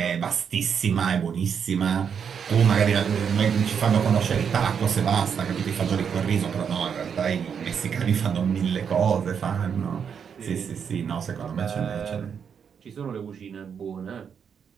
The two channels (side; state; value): left; quieter; 7.2 dB